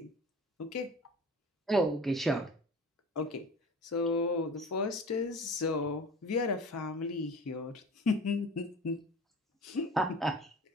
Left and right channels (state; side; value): normal; both; correlation 0.39